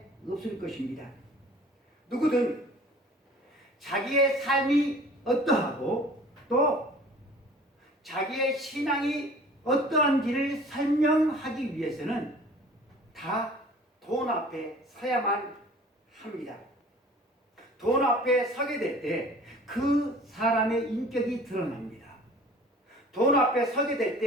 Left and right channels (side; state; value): both; normal; correlation 0.47